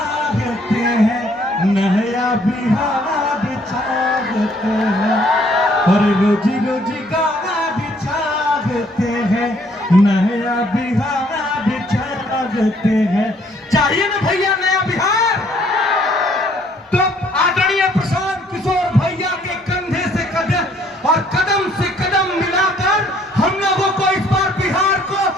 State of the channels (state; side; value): normal; both; correlation 0.63